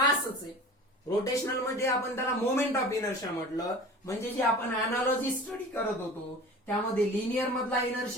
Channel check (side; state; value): both; normal; correlation 0.39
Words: आहे. रोटेशनल मध्ये आपण त्याला मोमेंट ऑफ इनर्शिया म्हटलं. म्हणजे जे आपण अनालॉजी स्टडी करत होतो त्यामध्ये लिनियर मधला